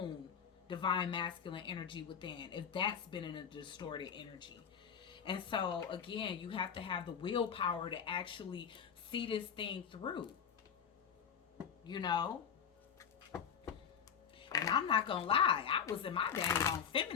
divine masculine energy within, if that's been in a distorted energy. And so again, you have to have the willpower to actually see this thing through, you know. And I'm not gonna lie, I was in my dang on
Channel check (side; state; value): right; quieter; 7.4 dB